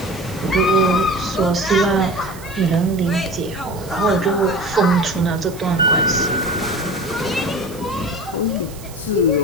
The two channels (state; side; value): noise; right; hiss, 19 dB below the sound